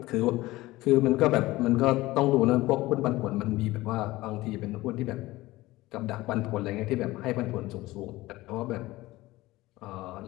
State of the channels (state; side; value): quieter; right; 18.6 dB